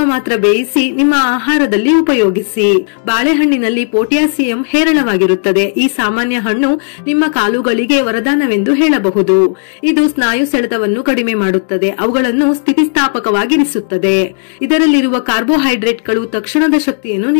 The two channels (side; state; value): right; silent; digital silence